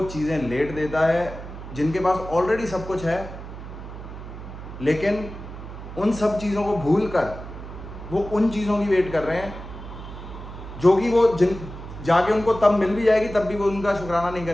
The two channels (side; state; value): right; noise; hum, 12 dB below the sound